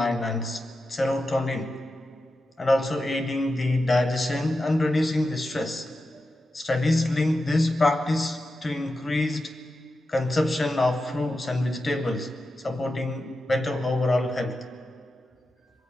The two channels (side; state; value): both; normal; correlation 0.90